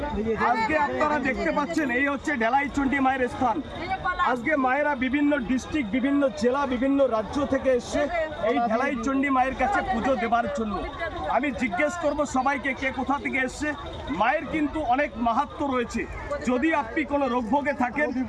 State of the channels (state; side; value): identical; both; correlation 1.00